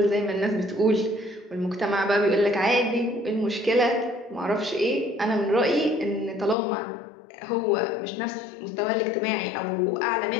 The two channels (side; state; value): right; drops out; at 6.6 s